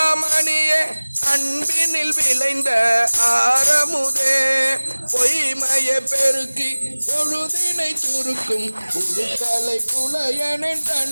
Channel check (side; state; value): both; inverted; correlation -1.00